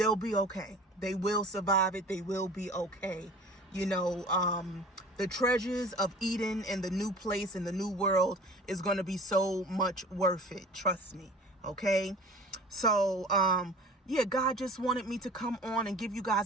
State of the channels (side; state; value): both; normal; correlation 0.43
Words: be okay. They will survive it. They will be okay. You know, the treasures of Eden and the new place and the new world is going to be so much worth it. Trust me. Okay. So, yeah, God just wanted me to come on and give you